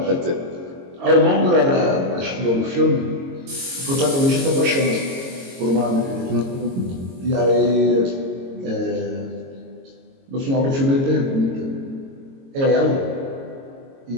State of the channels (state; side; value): late; left; 22 ms